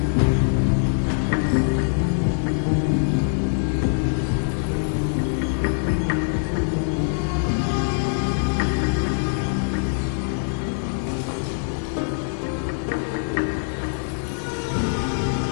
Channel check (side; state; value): right; silent; 63 dB below the other